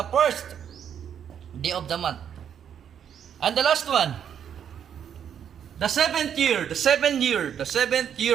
first day of the month. And the last one, the seventh year, the seventh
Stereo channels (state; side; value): quieter; left; 8.7 dB